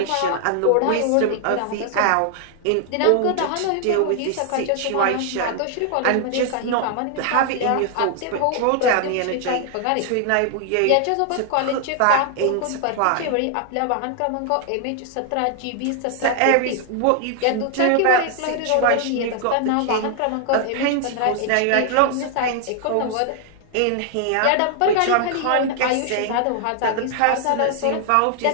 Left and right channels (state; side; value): different; both; correlation 0.00